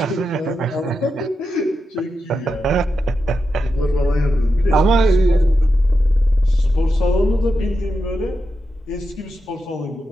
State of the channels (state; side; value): normal; both; correlation 0.88